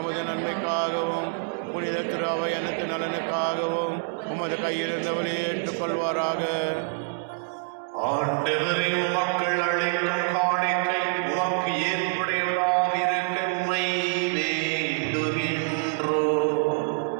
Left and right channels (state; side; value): silent; left; digital silence